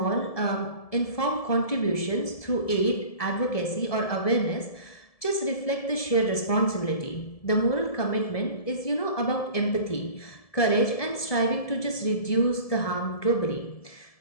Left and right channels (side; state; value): right; late; 1.7 ms